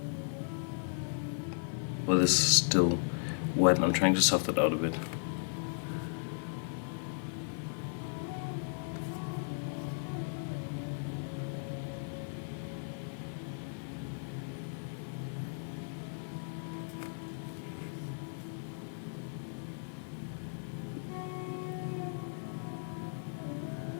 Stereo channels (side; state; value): right; silent; digital silence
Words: Well, this is still wet and I'm trying to soften it out a bit.